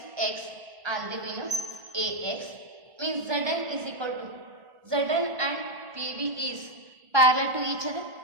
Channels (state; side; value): late; left; 1.5 ms